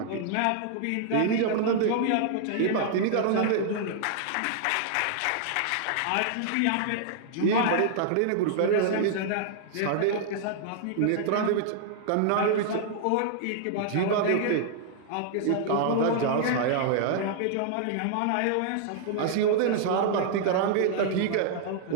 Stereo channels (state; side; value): different; both; correlation -0.01